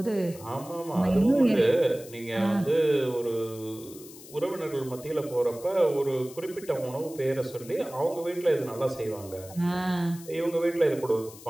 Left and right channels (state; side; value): noise; left; hiss, 18 dB below the sound